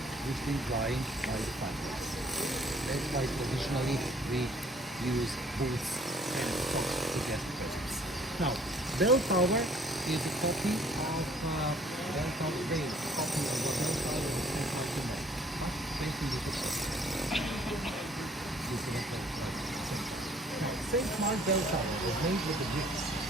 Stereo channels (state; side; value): normal; both; correlation 0.59